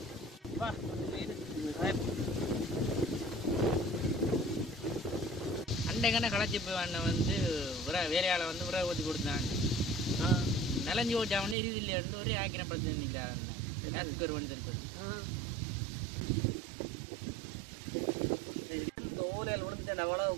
அண்டைக்கான களைச்சி போய் வந்து வேலையால் வந்து உரை ஊற்றி கொடுத்தாங்க. நிலஞ்சி ஓட்டா வந்து எரியுது இல்லையான்னு ஒரே ஆக்கிரம் படுத்து நிற்கிறார் கேஸ் குக்கர் வேண்டி தெரிஞ்சது. இந்த ஓலையில் விழுந்துட்டு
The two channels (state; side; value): drops out; left; at 11.6 s